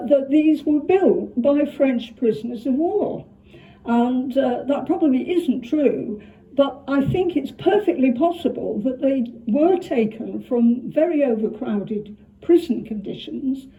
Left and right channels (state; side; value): identical; both; correlation 1.00